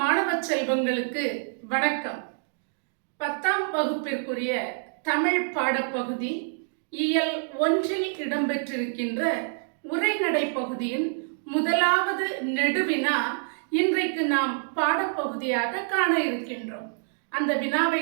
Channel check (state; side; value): silent; left; digital silence